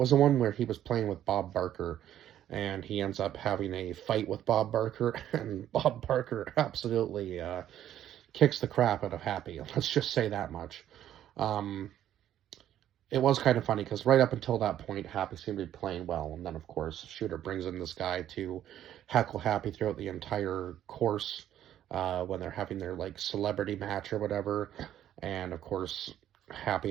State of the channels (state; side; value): quieter; left; 11.4 dB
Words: the one where he was playing with Bob Barker, and he ends up having a fight with Bob Barker, and Bob Barker absolutely kicks the crap out of Happy. Let's just say that much. Um, it was kind of funny because right up until that point, Happy seemed to be playing well, and then of course Shooter brings in this guy to heckle Happy throughout the entire course when they're having their like celebrity match or whatever, and of course